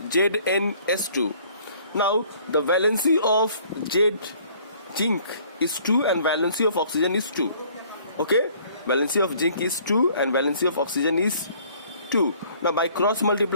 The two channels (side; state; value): both; inverted; correlation -0.57